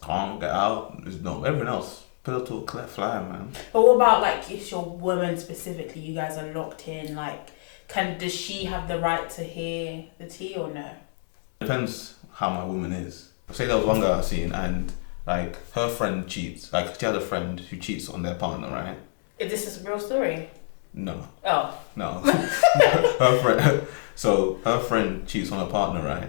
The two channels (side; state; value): right; silent; digital silence